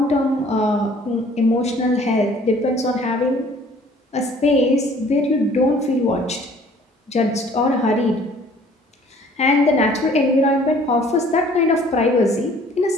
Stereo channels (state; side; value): normal; both; correlation 0.55